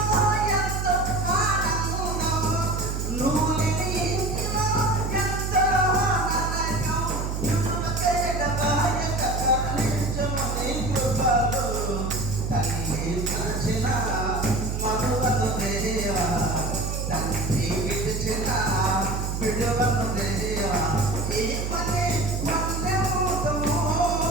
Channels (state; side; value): noise; right; hum, 2 dB below the sound